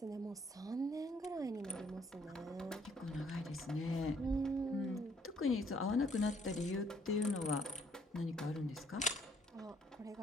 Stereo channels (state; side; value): normal; both; correlation 0.65